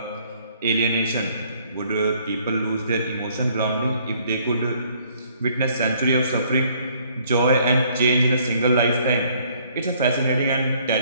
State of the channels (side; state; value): both; inverted; correlation -0.63